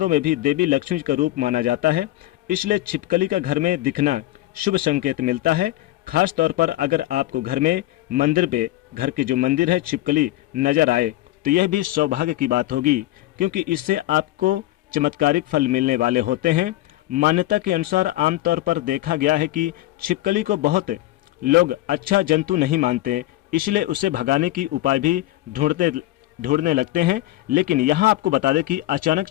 में भी देवी लक्ष्मी का रूप माना जाता है, इसलिए छिपकली का घर में दिखना शुभ संकेत मिलता है। खास तौर पर अगर आपको घर में मंदिर पे घर के जो मंदिर है छिपकली नजर आए तो यह भी सौभाग्य की बात होगी, क्योंकि इससे आपको चमत्कारिक फल मिलने वाले होते हैं। मान्यता के अनुसार आमतौर पर देखा गया है कि छिपकली को बहुत लोग अच्छा जंतु नहीं मानते, इसलिए उसे भगाने की उपाय भी ढूंढने लगते हैं। लेकिन यहाँ आपको बता दें कि अचानक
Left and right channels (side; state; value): right; quieter; 16.5 dB